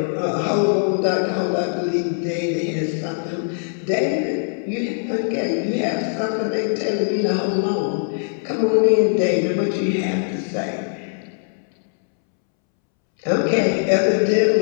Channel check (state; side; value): silent; right; 65 dB below the other